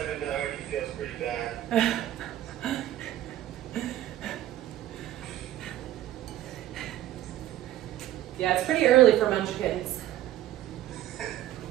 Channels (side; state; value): left; quieter; 13.3 dB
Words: already feels pretty bad. Yeah, it's pretty early for munchkins.